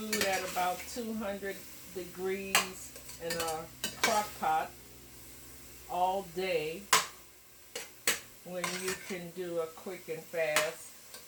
at about 200 degrees in a crock pot all day when you can do a quick and fast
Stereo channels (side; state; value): both; identical; correlation 1.00